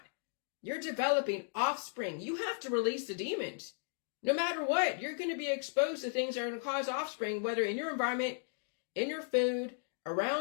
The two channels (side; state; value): right; silent; digital silence